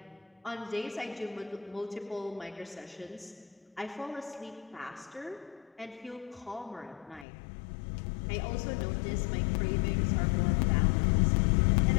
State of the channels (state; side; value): drops out; right; at 7.2 s